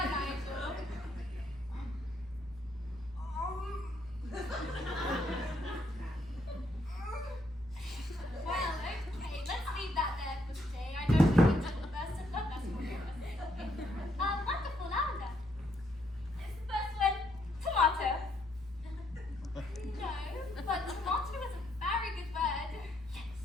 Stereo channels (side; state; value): both; normal; correlation 0.73